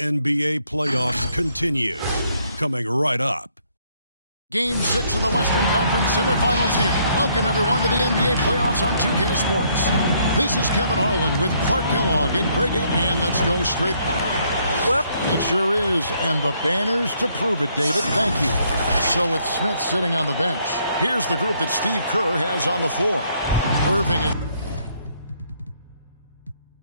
playoffs continue. Coming right up. Game 6 of the Western Conference semifinals here. Welcome, everyone, to the NBA playoffs on 2K Sports. This is Kevin Harlan with Clark Kellogg and Greg. And let's go straight. Well, it sure is. And the banners to prove it, David. Thank you. So with Smith sitting on the bench, here's the group that Steve Kerr has on the floor. Irving is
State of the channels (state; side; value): inverted; both; correlation -0.69